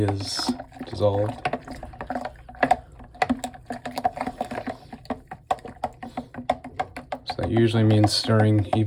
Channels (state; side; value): identical; both; correlation 1.00